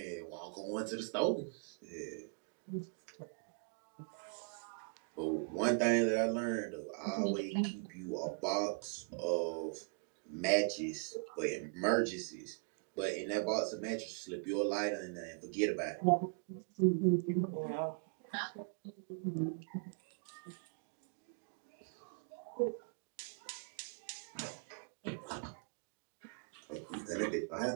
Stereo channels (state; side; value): quieter; left; 37.6 dB